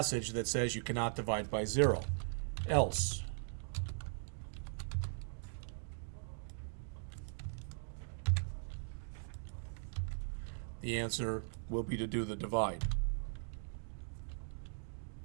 that says you cannot divide by 0. Else, the answer will be to do the divide.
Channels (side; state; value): left; silent; digital silence